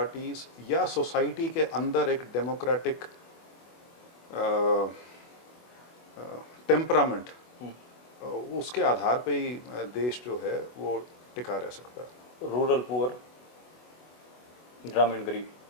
या सोसाइटी के अंदर एक डेमोक्रेटिक टेम्परामेंट, उसके आधार पे ही देश जो है वो टिका रह सकता है। रूरल पुअर, ग्रामीण गरीब?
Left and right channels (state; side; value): late; right; 24 ms